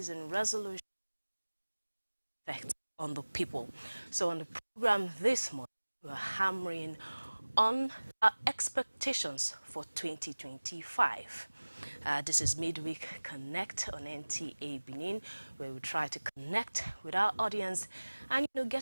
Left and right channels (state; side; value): inverted; both; correlation -1.00